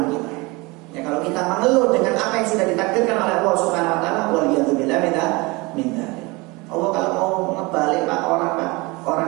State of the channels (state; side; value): quieter; left; 24.9 dB